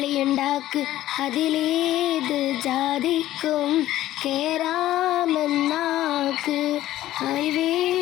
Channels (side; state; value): right; quieter; 14.2 dB